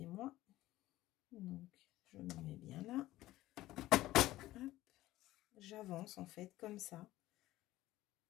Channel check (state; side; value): quieter; right; 16.2 dB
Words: Donc, je me mets bien là. J'avance en fait comme ça.